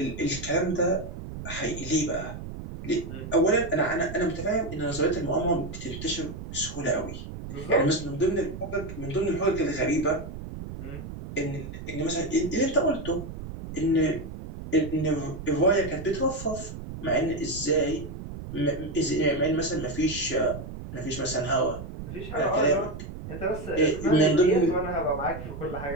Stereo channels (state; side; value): noise; right; rumble, 10 dB below the sound